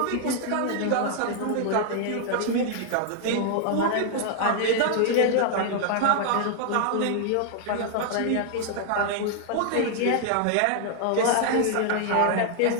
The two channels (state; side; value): different; both; correlation 0.00